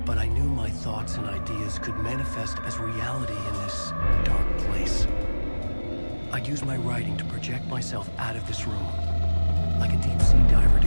but I knew my thoughts and ideas could manifest as reality in this dark place. I'd use my writing to project myself out of this room, like a deep-sea diver to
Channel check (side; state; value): both; inverted; correlation -1.00